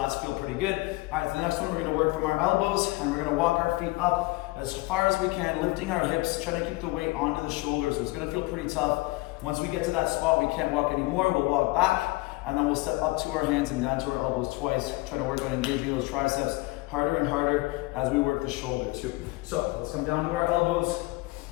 feel pretty good. All right, the next one, we're going to work from our elbows, and we're going to walk our feet up as far as we can, lifting our hips, trying to keep the weight onto the shoulders. It's going to feel pretty tough. Once we get to that spot, we can't walk anymore. We'll walk back, and then we'll step up to our hands and down to our elbows twice, trying to work on engaging those triceps harder and harder as we work the shoulder too. So let's come down to our elbows.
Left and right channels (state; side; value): quieter; right; 22.2 dB